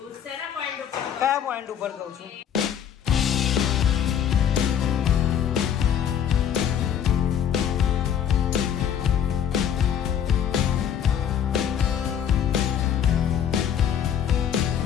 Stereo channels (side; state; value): right; quieter; 8.9 dB